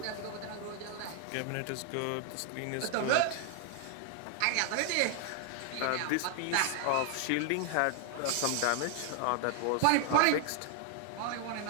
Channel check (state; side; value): different; both; correlation 0.00